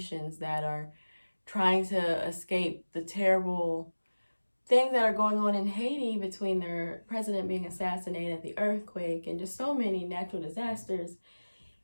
that are trying to escape the terrible things that are going on in Haiti between their president being assassinated, the earthquake, and just so many natural disasters.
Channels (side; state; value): both; inverted; correlation -1.00